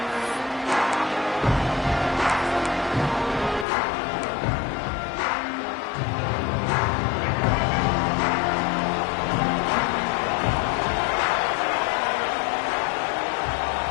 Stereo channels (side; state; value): right; drops out; at 3.7 s